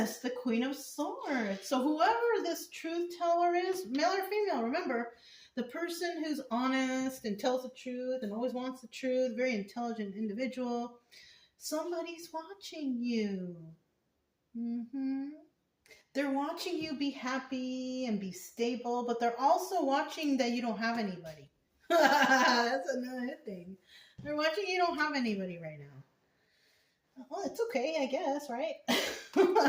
the Queen of Swords. So whoever this truth teller is, male or female, remember, the person who's honest and tells the truth and always wants the truth, very intelligent individual, somebody's watching you. They're watching you be happy and be stable, but they're also watching that you don't have anybody. That's another thing. They're watching you don't have anybody right now. Well, it's okay, I guess, right?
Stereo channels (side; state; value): both; identical; correlation 1.00